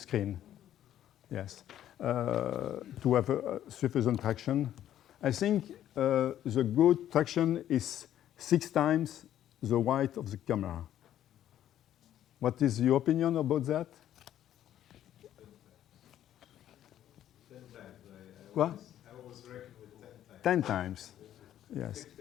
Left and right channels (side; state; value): right; quieter; 11.5 dB